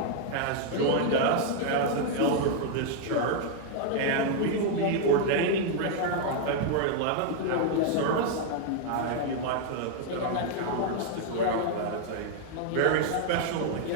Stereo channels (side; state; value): both; different; correlation 0.00